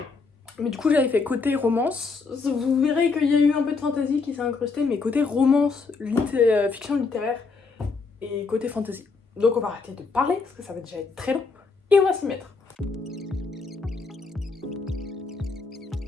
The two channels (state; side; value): quieter; right; 4.4 dB